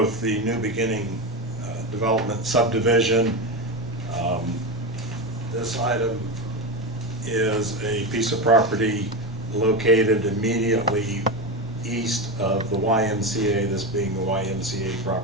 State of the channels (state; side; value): normal; both; correlation 0.18